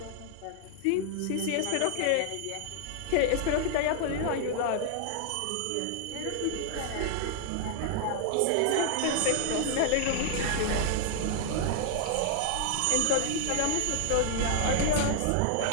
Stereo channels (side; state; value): both; different; correlation 0.00